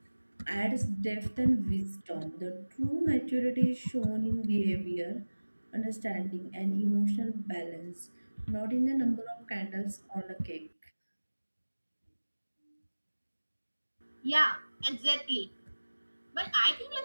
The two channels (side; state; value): both; inverted; correlation -1.00